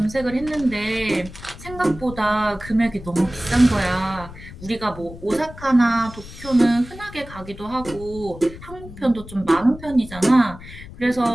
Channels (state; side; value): noise; left; rumble, 15 dB below the sound